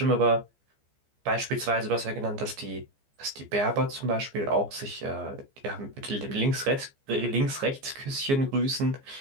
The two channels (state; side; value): late; left; 15 ms